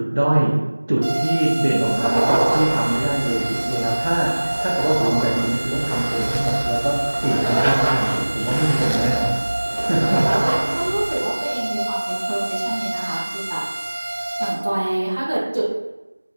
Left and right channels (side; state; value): both; inverted; correlation -1.00